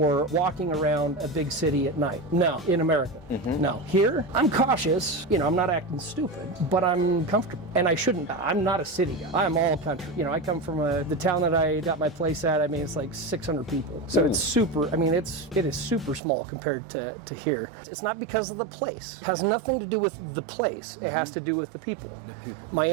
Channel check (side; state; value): left; drops out; at 16.2 s